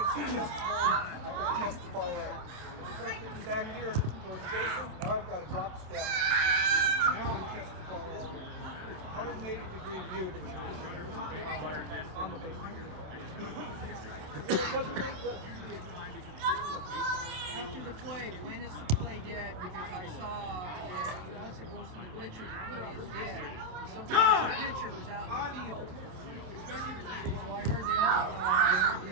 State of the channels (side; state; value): left; late; 27 ms